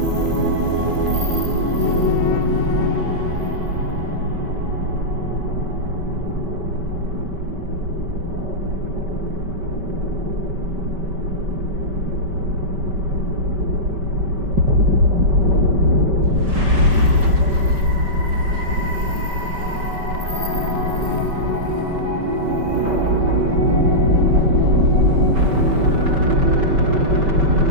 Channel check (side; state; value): left; late; 5.2 ms